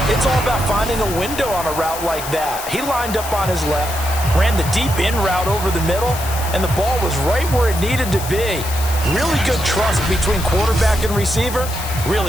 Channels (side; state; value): left; noise; hiss, 9 dB below the sound